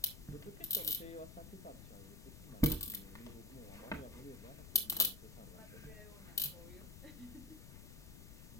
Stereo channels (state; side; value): noise; left; rumble, 13 dB below the sound